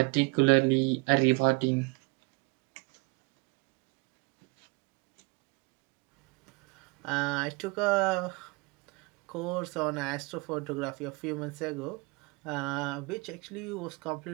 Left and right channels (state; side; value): quieter; left; 28.3 dB